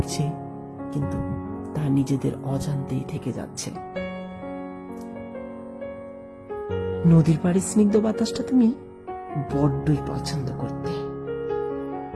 কিন্তু তা নিজেদের অজান্তেই থেকে যাচ্ছে। নদীর পাড়ে স্নিগ্ধ বাতাসটা তুমি বড্ডই পছন্দ করতে।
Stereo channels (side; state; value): both; identical; correlation 1.00